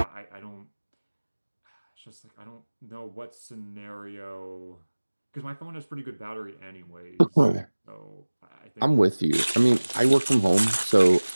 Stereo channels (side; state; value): both; inverted; correlation -1.00